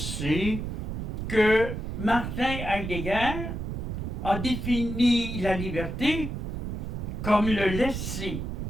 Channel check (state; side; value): noise; right; rumble, 4 dB below the sound